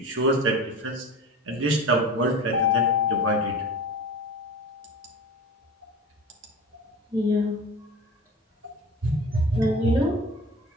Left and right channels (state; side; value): normal; both; correlation 0.34